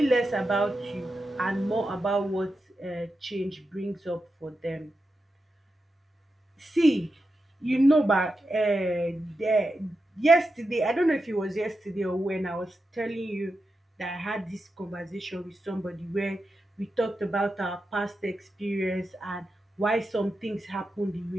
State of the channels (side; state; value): both; normal; correlation 0.89